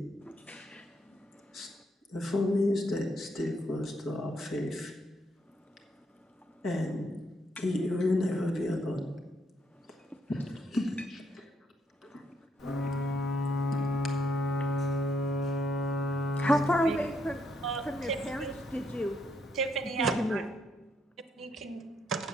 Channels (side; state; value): both; normal; correlation 0.75